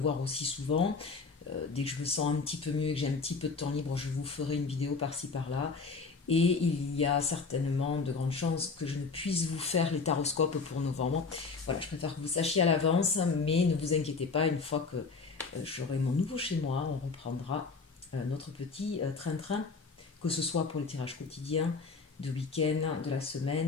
aussi souvent. Dès que je me sens un petit peu mieux et que j'ai un petit peu de temps libre, je vous ferai une vidéo par-ci par-là. Et il y a certainement de grandes chances que je ne puisse vous faire les taroscopes pour novembre. Voilà, je préfère que vous sachiez à l'avance, mais ne vous inquiétez pas, une fois que j'aurai mon nouveau chez moi, on reprendra notre petit train-train, que ce soit pour les tirages quotidiens, de week-end, de la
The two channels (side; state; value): right; quieter; 4.5 dB